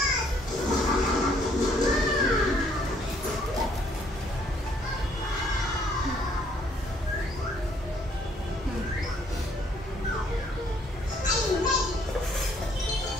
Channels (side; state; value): both; normal; correlation 0.65